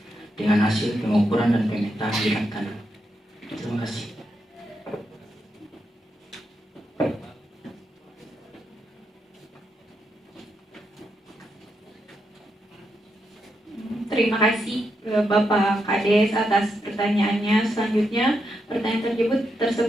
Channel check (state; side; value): normal; both; correlation 0.83